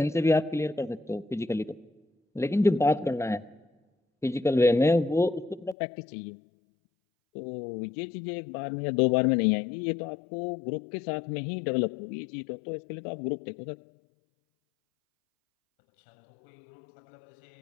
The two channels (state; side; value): drops out; right; at 5.8 s